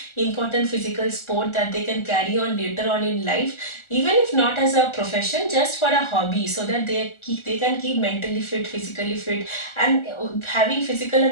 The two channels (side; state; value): right; late; 1.4 ms